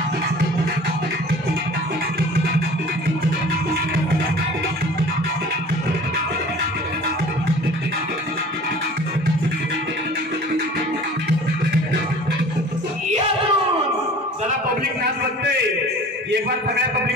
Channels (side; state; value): both; normal; correlation 0.45